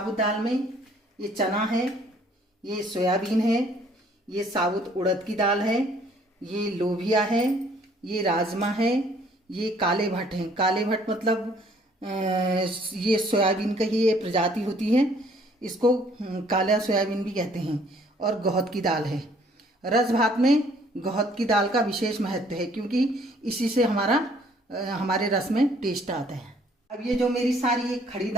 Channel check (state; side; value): normal; both; correlation 0.61